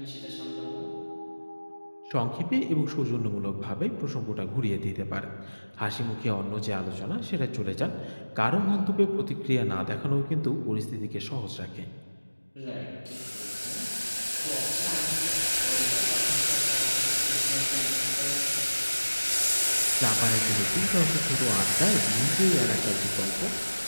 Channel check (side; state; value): both; inverted; correlation -1.00